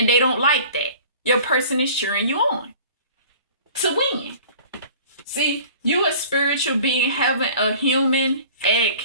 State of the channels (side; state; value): both; inverted; correlation -0.45